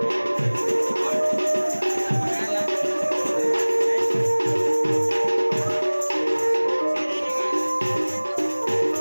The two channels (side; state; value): both; inverted; correlation -1.00